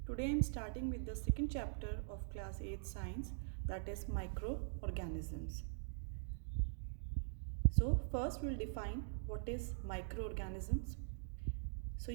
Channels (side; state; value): left; silent; digital silence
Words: Today I am starting with the second chapter of class 8 science, that is microorganisms. So first we'll define what is microorganisms. So